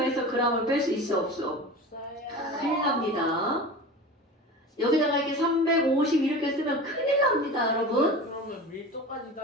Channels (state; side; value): normal; both; correlation 0.33